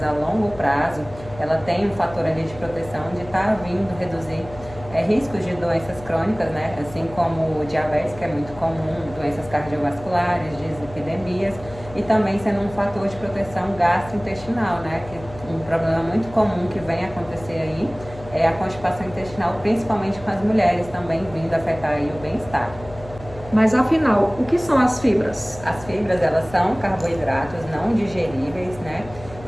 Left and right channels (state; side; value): noise; left; hum, 16 dB below the sound